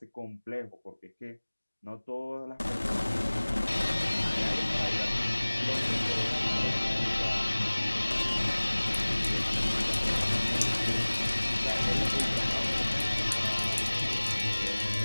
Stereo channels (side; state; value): both; inverted; correlation -1.00